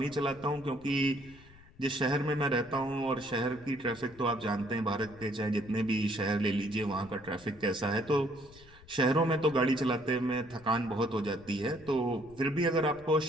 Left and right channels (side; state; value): left; noise; rumble, 23 dB below the sound